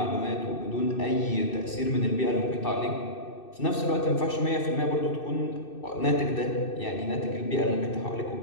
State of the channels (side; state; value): right; late; 2.6 ms